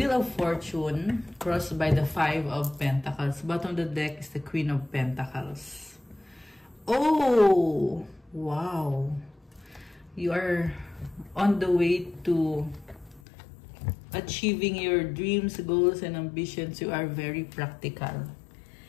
of Fortune crossed by the Five of Pentacles. Bottom of the deck is the Queen of Pentacles. Oh, wow. You are on the way to achieving your dreams, goals, and ambitions. You are very practical.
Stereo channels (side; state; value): right; drops out; at 13.2 s